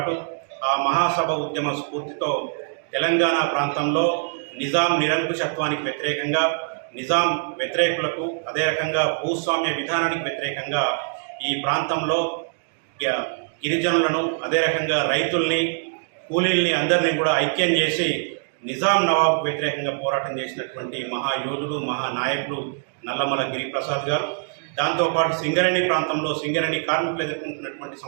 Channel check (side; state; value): left; silent; digital silence